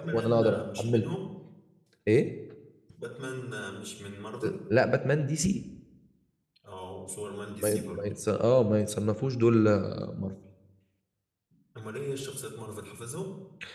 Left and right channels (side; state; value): both; identical; correlation 1.00